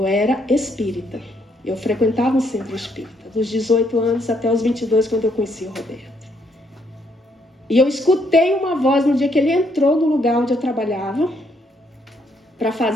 era espírita. Eu frequentava um centro espírita, dos 18 anos até os 22, quando eu conheci o Roberto. E eu escutei uma voz no dia que ele entrou no lugar onde eu trabalhava para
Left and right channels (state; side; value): normal; both; correlation 0.72